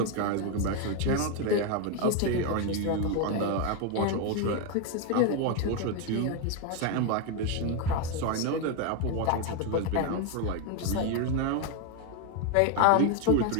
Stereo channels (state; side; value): different; both; correlation 0.01